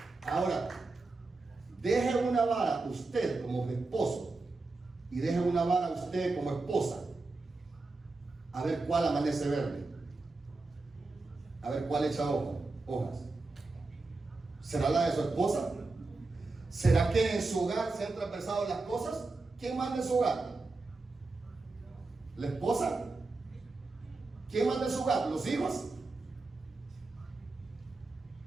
Ahora, deje una vara usted como esposo y deje una vara usted como esposa, a ver cuál amanece verde, a ver cuál echa hojas. ¿Será la de su esposa? ¿Será que en su hogar se han transversado las cosas? ¿Quién manda en su hogar? ¿La esposa? ¿Quién manda en su hogar? ¿Los hijos?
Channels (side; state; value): left; quieter; 3.5 dB